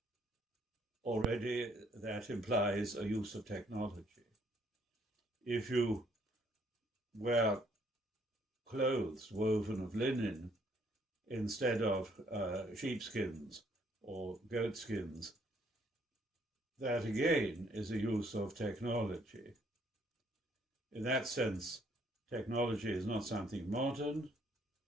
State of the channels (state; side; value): normal; both; correlation 0.66